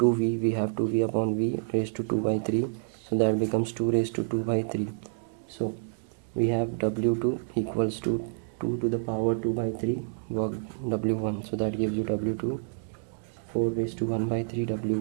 we have 2V upon V raised to 2 by 3. So that becomes 2 raised to 2 by 3. So we have W2 equals to 2 to the power 2 by 3 work W1. So that gives you W2 4 raised to 1 by 3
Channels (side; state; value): left; silent; 59 dB below the other